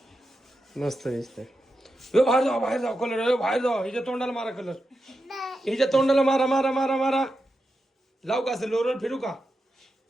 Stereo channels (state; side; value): normal; both; correlation 0.89